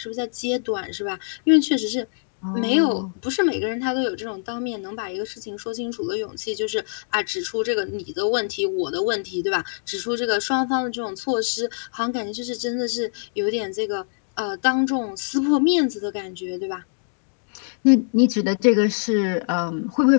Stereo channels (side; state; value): right; silent; digital silence